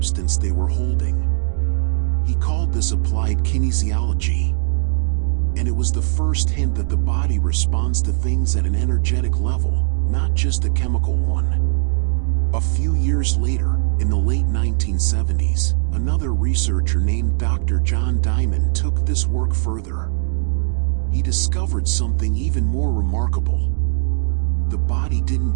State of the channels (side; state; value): left; silent; digital silence